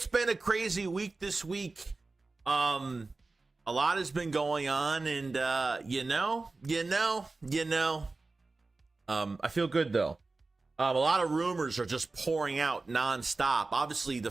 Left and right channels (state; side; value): quieter; left; 3.6 dB